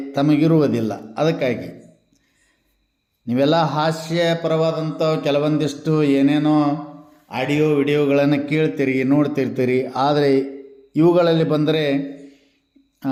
ತಮಗಿರುವುದಿಲ್ಲ. ಅದಕ್ಕಾಗಿ ನೀವೆಲ್ಲ ಹಾಸ್ಯಪರವಾದಂಥ ಕೆಲವೊಂದಿಷ್ಟು ಏನೇನೋ ಆಡಿಯೋ ವಿಡಿಯೋಗಳನ್ನು ಕೇಳ್ತೀರಿ, ನೋಡ್ತಿರ್ತೀರಿ. ಆದರೆ ಇವುಗಳಲ್ಲಿ ಬಂದರೆ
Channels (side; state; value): both; identical; correlation 1.00